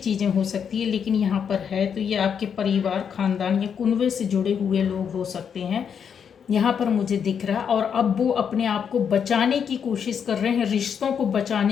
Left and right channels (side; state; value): right; quieter; 7.4 dB